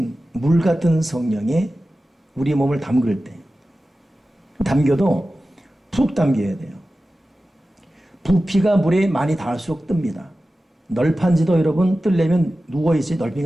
물 같은 성령에 우리 몸을 담글 때, 담겨도 푹 담겨야 돼요. 부피가 물에 많이 닿을수록 뜹니다. 널판지도 여러분 뜨려면 누워있어야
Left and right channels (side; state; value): both; normal; correlation 0.95